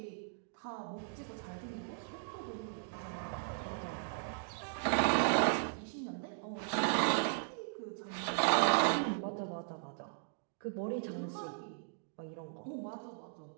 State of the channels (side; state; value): left; silent; digital silence